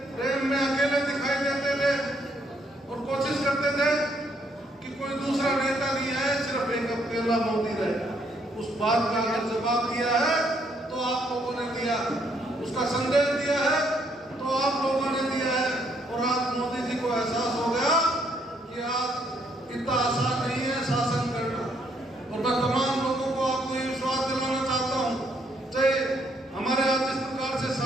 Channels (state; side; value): normal; both; correlation 0.71